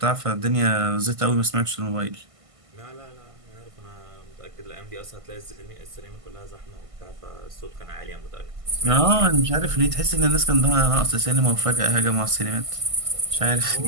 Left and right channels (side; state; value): left; late; 1.5 ms